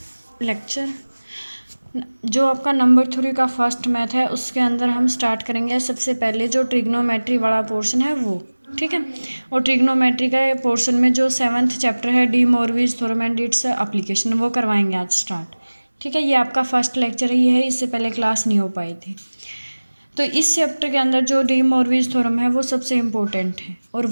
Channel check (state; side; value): inverted; both; correlation -1.00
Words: lecture। जो आपका number 3 का फर्स्ट मैथ है उसके अंदर हम स्टार्ट करेंगे सबसे पहले जो ट्रिग्नोमेट्री वाला पोर्शन है वो, ठीक है। और ट्रिग्नोमेट्री का पोर्शन में जो 7th चैप्टर है De Moivre's theorem and its application वो करवाएंगे आज स्टार्ट, ठीक है। ये आपका फर्स्ट लेक्चर ही है, इससे पहले क्लास नहीं हो पाई थी। तो इस चैप्टर के अंदर जो डी मोरविज थ्योरम है वो सबसे इम्पोर्टेंट है और